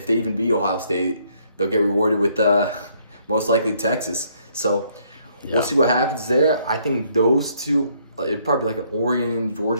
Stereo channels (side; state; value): both; inverted; correlation -0.67